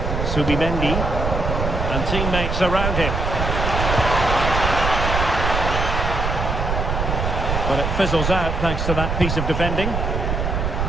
Subimendi and teammates around him. But it fizzles out thanks to that piece of defending.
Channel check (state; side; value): noise; right; rumble, 1 dB below the sound